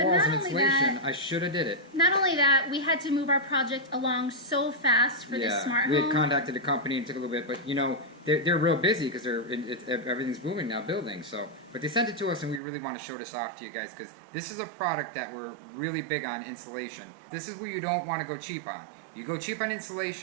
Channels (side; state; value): left; drops out; at 12.6 s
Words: and insulation. I should have did it. Not only that, we had to move our project along so fast for this smart home. We had contacted the company and it took a little bit, but you know, they're real busy because everything's booming now, building. So, but they sent it to us and we really want to show this off to you guys because this is a product that we're really big on insulation. This is where you don't want to go cheap on. You go cheap on